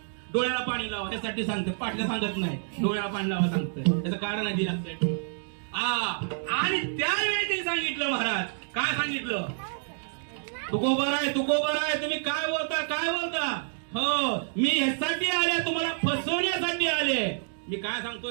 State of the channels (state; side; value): silent; left; digital silence